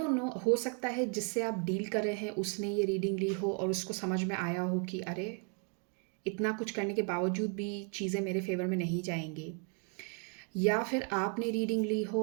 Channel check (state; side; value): quieter; left; 38.2 dB